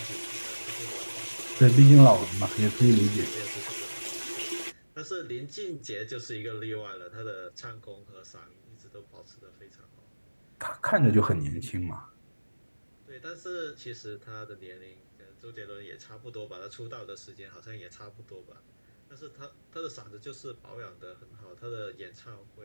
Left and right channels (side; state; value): both; inverted; correlation -1.00